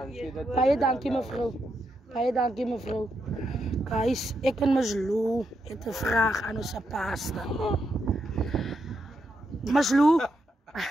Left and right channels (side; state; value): both; normal; correlation 0.82